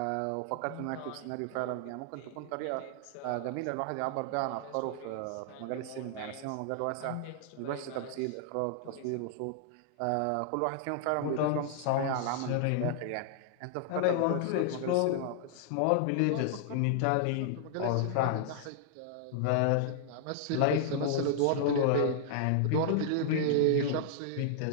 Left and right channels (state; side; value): different; both; correlation -0.01